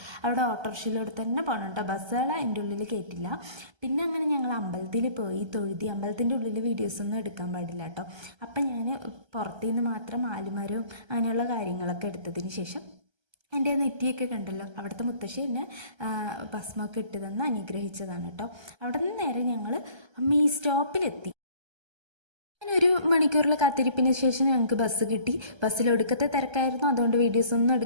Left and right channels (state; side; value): late; left; 1.3 ms